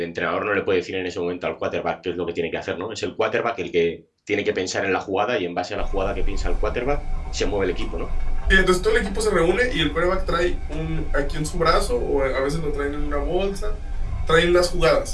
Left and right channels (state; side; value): identical; both; correlation 1.00